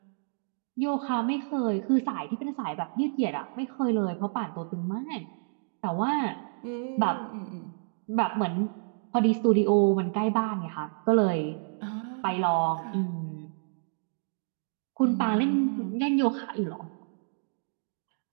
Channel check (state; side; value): silent; left; digital silence